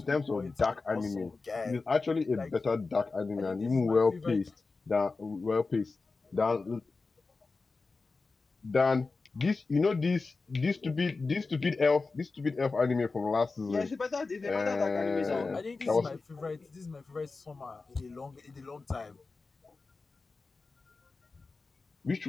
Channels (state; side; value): quieter; right; 4.0 dB